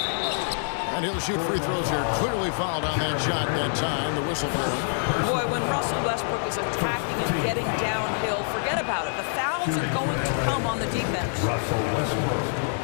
And he'll shoot free throws here. Clearly fouled on that shot that time. The whistle blowing. Boy, when Russell Westbrook is attacking and getting downhill, forget about it. The fouls are going to come on the defense. Russell Westbrook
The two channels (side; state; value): right; silent; digital silence